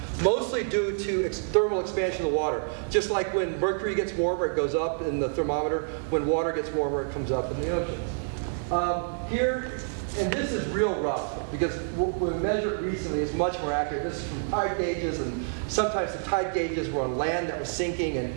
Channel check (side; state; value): left; silent; digital silence